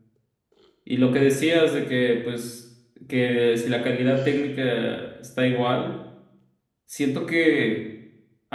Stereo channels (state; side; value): identical; both; correlation 1.00